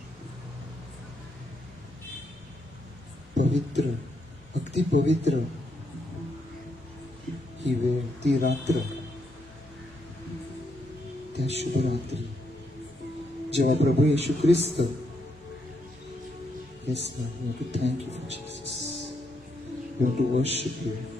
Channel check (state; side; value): normal; both; correlation 0.78